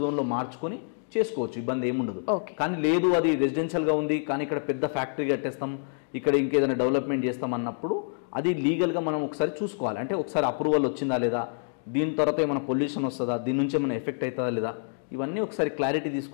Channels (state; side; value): silent; right; digital silence